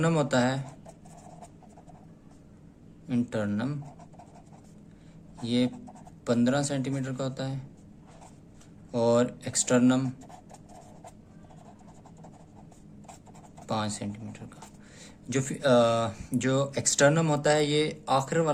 होता है, इंटरनम ये 15 सेंटीमीटर का होता है, और एक्सटर्नम 5 सेंटीमीटर का। जो एक्सटर्नम होता है ये आखिर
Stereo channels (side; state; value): both; identical; correlation 1.00